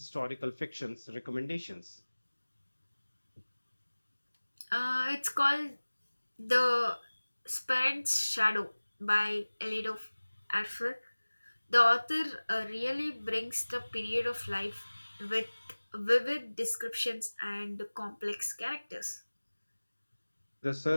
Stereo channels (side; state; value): both; inverted; correlation -1.00